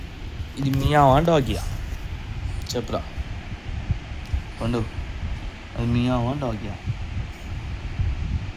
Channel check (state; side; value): identical; both; correlation 1.00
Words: ఇది మియావా డాగియా? చెప్పురా పండు, అది మియావా డాగియా?